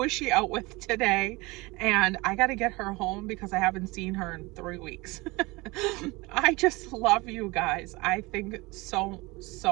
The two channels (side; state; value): left; quieter; 23.5 dB